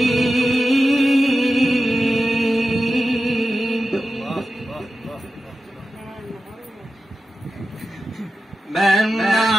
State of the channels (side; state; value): both; normal; correlation 0.92